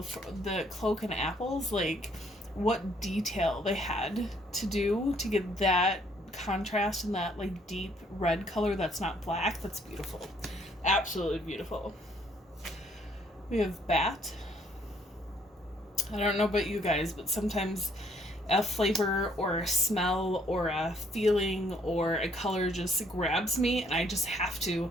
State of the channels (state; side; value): normal; both; correlation 0.65